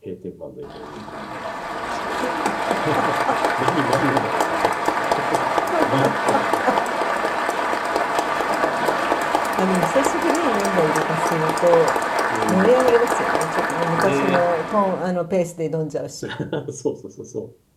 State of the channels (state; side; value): identical; both; correlation 1.00